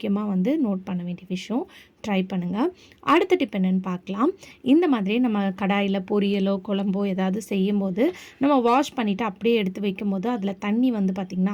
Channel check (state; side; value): identical; both; correlation 1.00